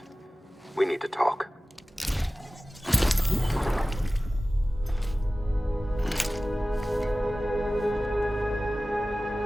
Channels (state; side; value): normal; both; correlation 0.97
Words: We need to talk.